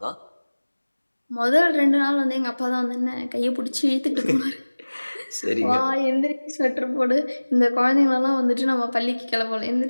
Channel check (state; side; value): inverted; both; correlation -1.00